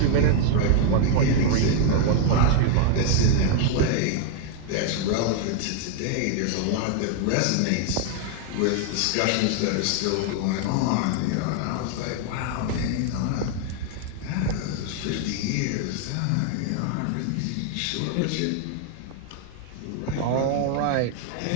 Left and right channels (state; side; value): different; both; correlation 0.00